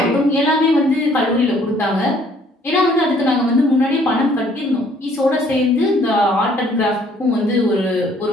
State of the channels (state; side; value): normal; both; correlation 0.61